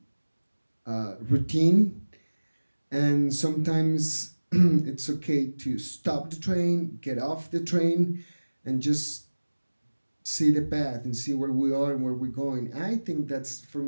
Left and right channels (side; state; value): both; inverted; correlation -1.00